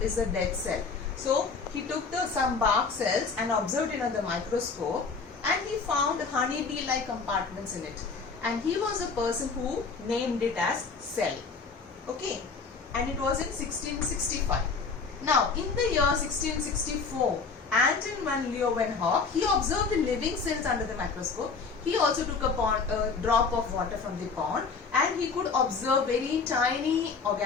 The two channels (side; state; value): right; quieter; 4.8 dB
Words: is a dead cell. So, he took some bark cells and observed it under the microscope and he found honeybee-like compartments in it. And he was a person who named it as cell. Okay. And it was in 1665. Now, in the year 1664, Anton van Leeuwenhoek, he observed the living cells under the microscope. He also took a drop of water from the pond and he could observe very tiny